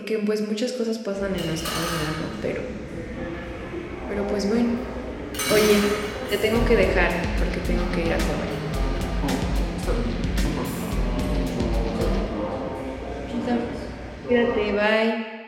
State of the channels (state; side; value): identical; both; correlation 1.00